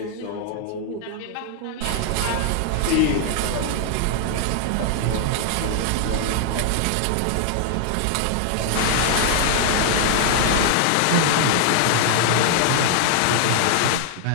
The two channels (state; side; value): different; both; correlation 0.00